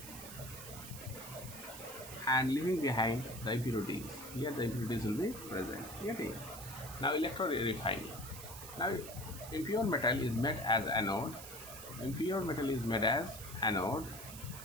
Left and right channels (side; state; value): right; noise; hiss, 12 dB below the sound